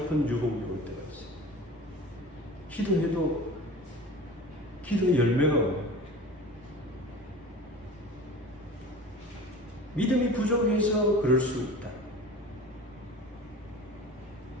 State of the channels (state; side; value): normal; both; correlation 0.38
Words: 유혹이 올 때가 있어요. 기도해도 기도의 열매가 와요. 믿음이 부족해서 그럴 수 있다.